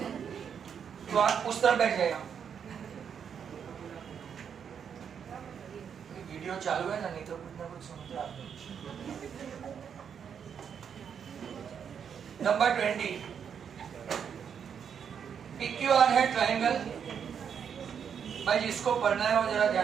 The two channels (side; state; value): left; quieter; 7.5 dB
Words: तो आप उस तरफ बैठ जाएगा। वीडियो चालू है ना, नहीं तो कुछ ना कुछ सुनते आप। नंबर 20, PQR है ट्राइंगल। भाई जिसको पढ़ना है वो जरा